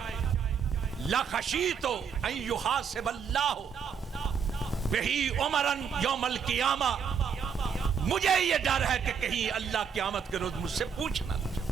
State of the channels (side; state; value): left; quieter; 6.7 dB